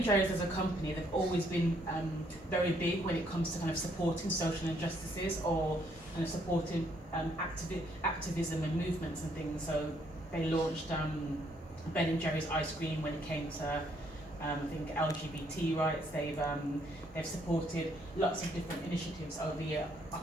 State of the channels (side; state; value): both; normal; correlation 0.69